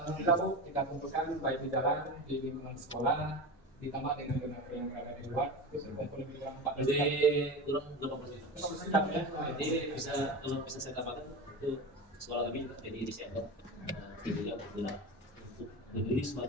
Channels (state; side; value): normal; both; correlation 0.26